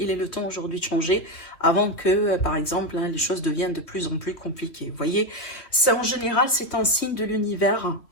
aujourd'hui de changer avant que, par exemple, hein, les choses deviennent de plus en plus compliquées. Vous voyez, ça en général, c'est un signe de l'univers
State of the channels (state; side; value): late; right; 2.8 ms